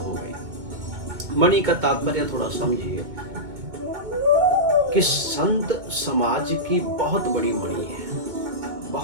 गई। मणि का तात्पर्य थोड़ा समझिए कि संत समाज की बहुत बड़ी मणि है,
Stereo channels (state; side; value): late; left; 2.2 ms